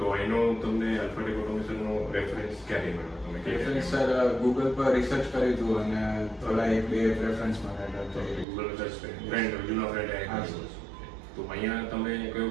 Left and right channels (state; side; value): drops out; left; at 8.5 s